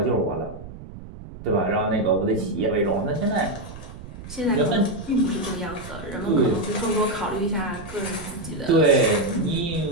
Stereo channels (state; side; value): noise; right; rumble, 14 dB below the sound